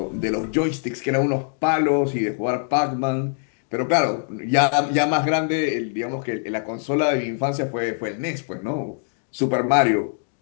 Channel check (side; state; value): right; silent; digital silence